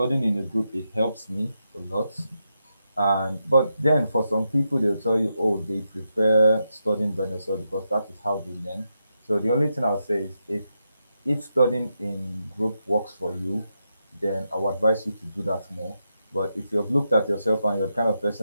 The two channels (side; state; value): both; inverted; correlation -0.85